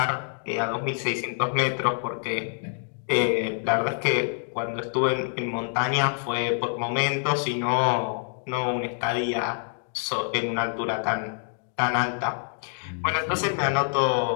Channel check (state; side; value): silent; right; digital silence